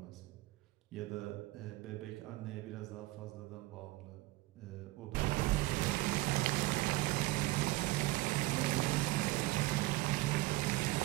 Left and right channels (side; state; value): left; quieter; 20.0 dB